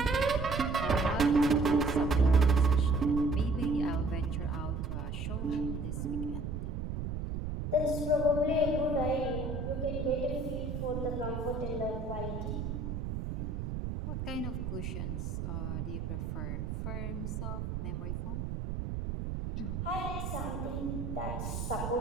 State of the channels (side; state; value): right; noise; rumble, 4 dB below the sound